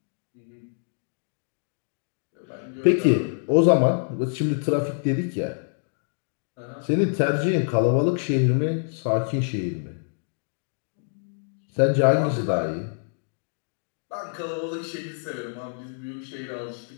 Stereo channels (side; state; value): right; silent; digital silence